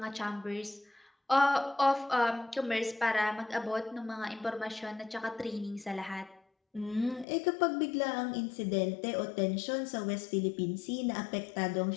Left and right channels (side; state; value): right; drops out; at 7.2 s